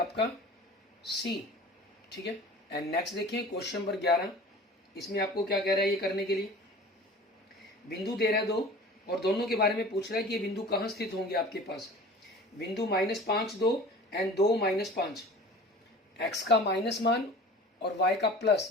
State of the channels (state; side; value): normal; both; correlation 0.41